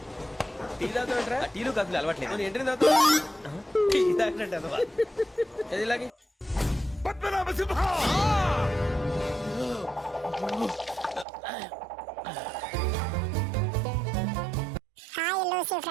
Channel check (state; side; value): drops out; left; at 11.2 s